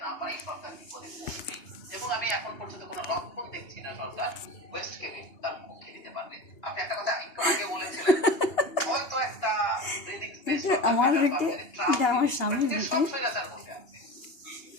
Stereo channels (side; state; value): right; late; 2.8 ms